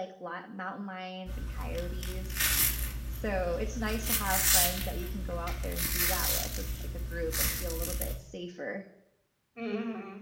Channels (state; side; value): identical; both; correlation 1.00